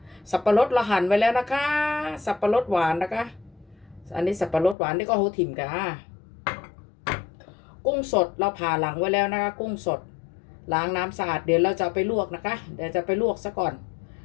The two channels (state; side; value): drops out; right; at 4.8 s